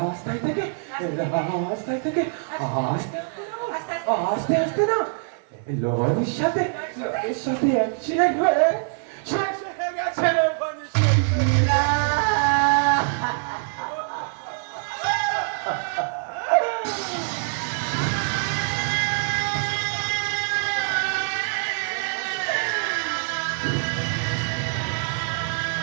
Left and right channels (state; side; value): silent; left; digital silence